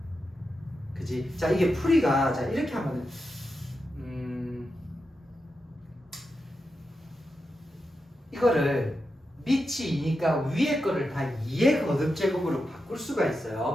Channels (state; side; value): normal; both; correlation 0.88